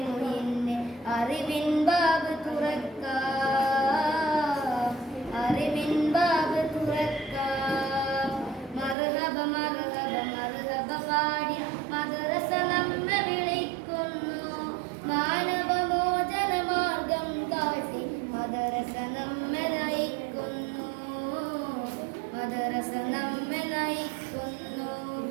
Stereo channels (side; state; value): left; drops out; at 9.0 s